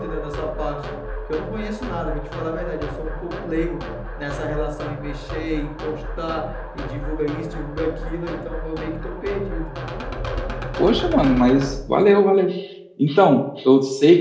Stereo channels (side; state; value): both; identical; correlation 1.00